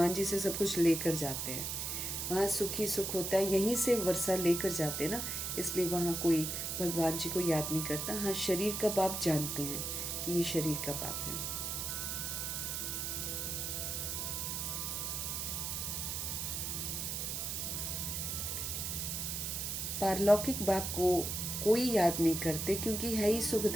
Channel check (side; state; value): right; noise; hiss, 2 dB below the sound